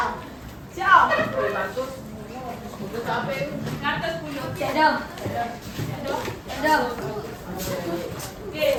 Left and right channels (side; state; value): both; identical; correlation 1.00